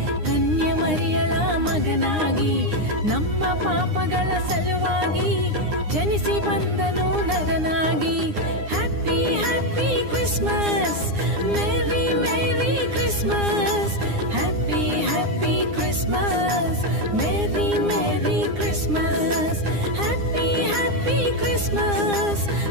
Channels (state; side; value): late; left; 9.8 ms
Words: ಕನ್ಯೆ ಮರಿಯಳ ಮಗನಾಗಿ ನಮ್ಮ ಪಾಪಗಳ ಸಲುವಾಗಿ ಜನಿಸಿ ಬಂದನು ನರನಾಗಿ. Happy happy Christmas, merry merry Christmas. Happy happy Christmas, merry merry Christmas. Happy happy Christmas,